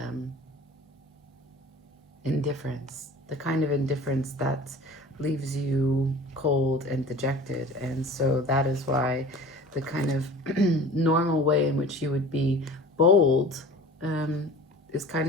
indifference, the kind of indifference that leaves you cold and dejected. And so that is why the kind of normal way in which you would be bold is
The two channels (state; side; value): normal; both; correlation 0.41